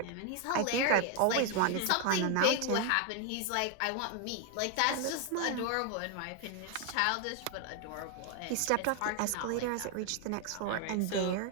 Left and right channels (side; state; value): both; different; correlation 0.01